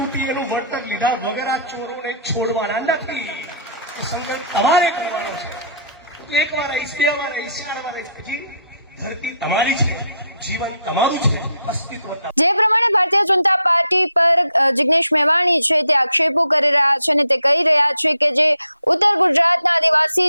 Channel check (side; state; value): both; inverted; correlation -0.67